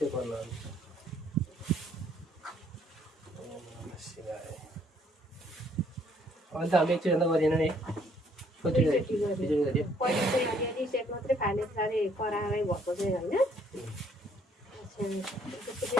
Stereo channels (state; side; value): normal; both; correlation 0.65